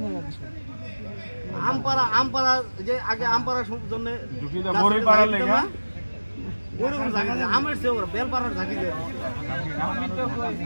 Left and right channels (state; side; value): inverted; both; correlation -1.00